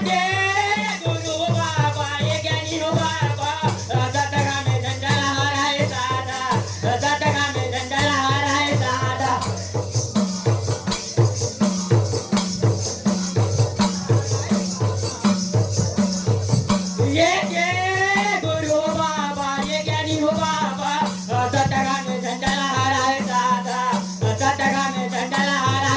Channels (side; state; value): both; identical; correlation 1.00